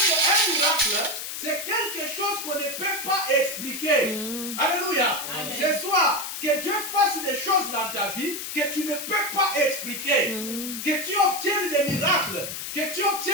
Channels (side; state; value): left; noise; hiss, 6 dB below the sound